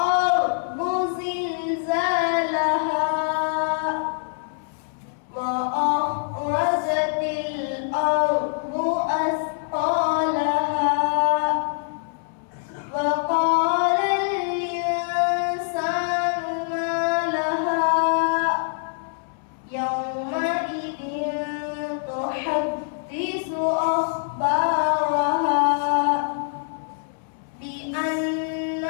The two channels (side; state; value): right; silent; digital silence